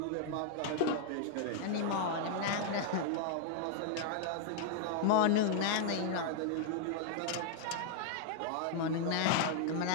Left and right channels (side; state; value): both; different; correlation 0.00